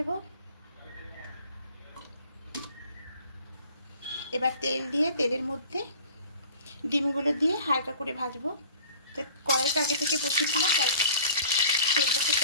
এবার তেল দিয়ে তেলের মধ্যে ডিমগুলো দিয়ে হালকা করে ভাজবো। তো কড়াইটা আগে থেকে বসিয়েছিলাম, তাই তেলটা খুব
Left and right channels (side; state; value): both; inverted; correlation -0.47